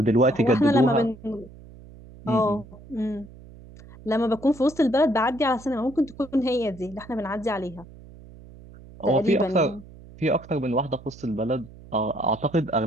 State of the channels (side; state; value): right; noise; hum, 20 dB below the sound